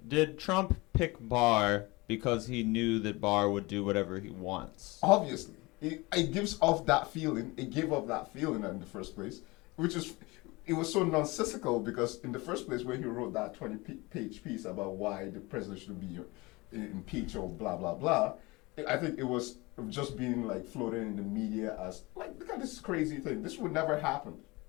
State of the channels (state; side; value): quieter; right; 23.5 dB